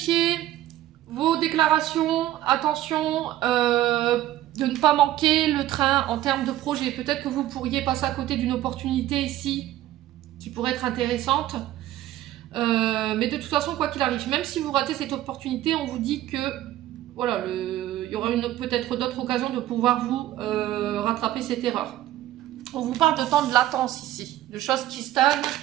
vos déclarations. Attention de ne pas manquer le train en termes de projet. Peut-être que vous pourriez passer à côté d'une opportunité ici qui pourrait être intéressante. Mais de toute façon, quoi qu'il arrive, même si vous ratez cette opportunité, on vous dit que voilà, il y aura peut-être d'autres occasions de pouvoir vous rattraper cette erreur. On vous parle de temps de latence ici, de choses qui stagnent.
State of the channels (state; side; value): quieter; left; 13.9 dB